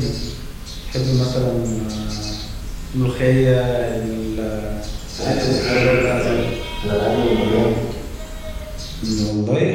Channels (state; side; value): identical; both; correlation 1.00